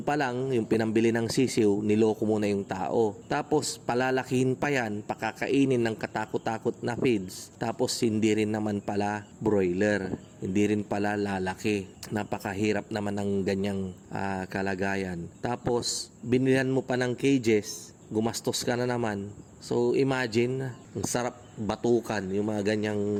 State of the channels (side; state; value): both; identical; correlation 1.00